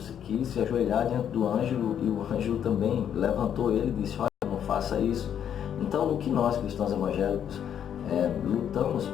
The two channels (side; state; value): right; quieter; 9.1 dB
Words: quis se ajoelhar diante do anjo, e o anjo também levantou ele e disse, olha, não faça isso. Então, o que nós, cristãos evangélicos, lutamos